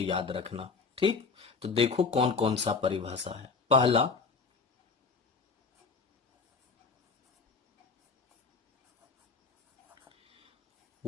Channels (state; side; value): quieter; right; 4.7 dB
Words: रखना। ठीक, तो देखो कौन कौन सा परिभाषा है। पहला,